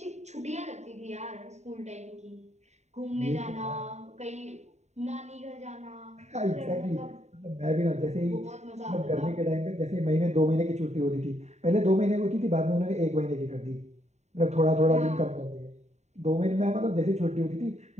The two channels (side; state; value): left; late; 0.33 ms